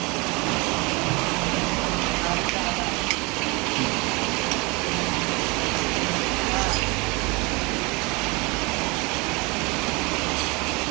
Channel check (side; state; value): left; quieter; 27.0 dB